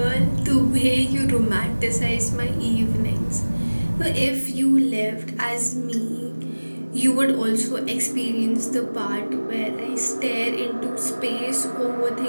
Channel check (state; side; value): inverted; both; correlation -1.00